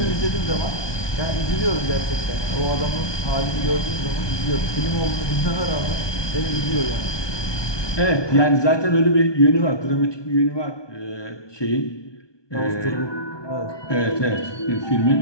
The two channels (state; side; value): late; right; 1.2 ms